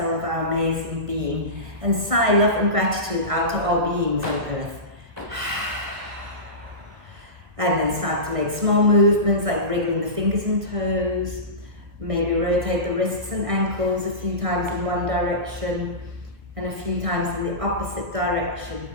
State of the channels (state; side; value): late; left; 1.7 ms